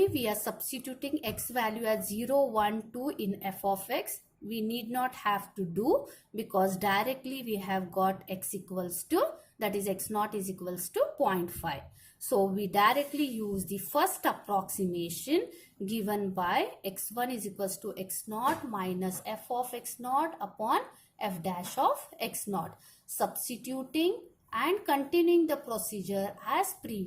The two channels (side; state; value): both; identical; correlation 1.00